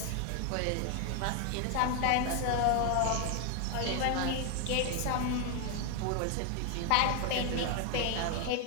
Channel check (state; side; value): different; both; correlation 0.01